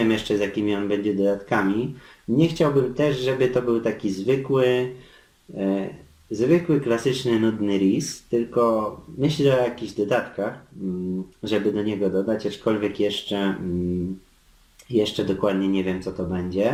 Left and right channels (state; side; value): identical; both; correlation 1.00